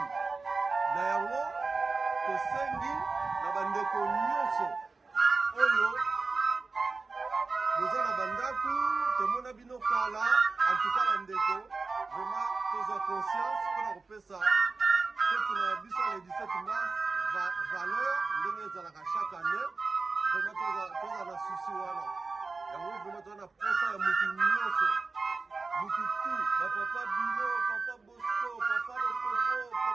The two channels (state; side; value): quieter; left; 4.0 dB